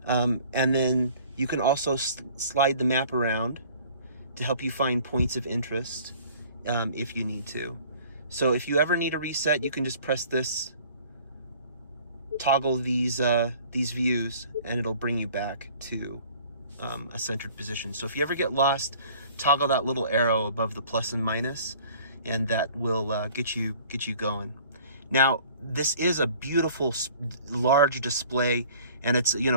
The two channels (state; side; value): inverted; both; correlation -0.51